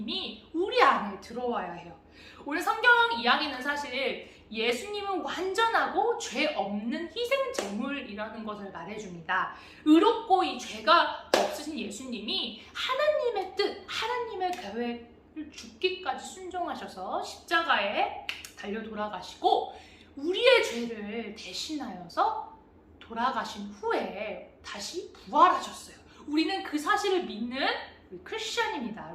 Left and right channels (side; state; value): both; identical; correlation 1.00